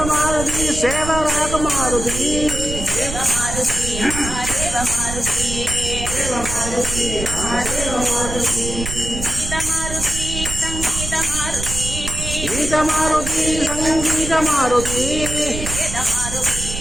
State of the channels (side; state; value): right; noise; rumble, 6 dB below the sound